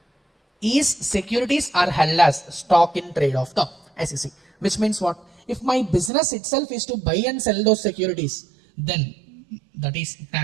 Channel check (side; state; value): left; drops out; at 6.1 s